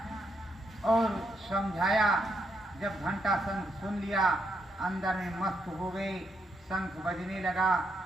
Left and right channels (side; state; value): both; normal; correlation 0.79